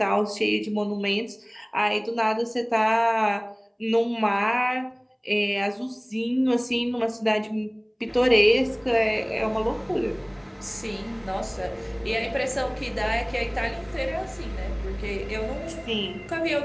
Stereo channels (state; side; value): identical; both; correlation 1.00